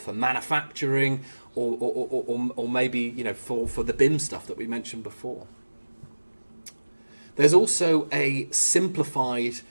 manufacturing, or maybe for the BIM stuff that we mentioned before. There's also a simplified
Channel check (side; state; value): both; inverted; correlation -1.00